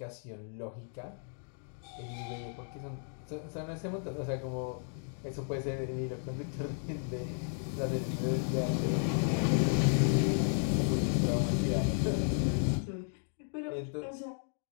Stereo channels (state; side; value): silent; right; 55 dB below the other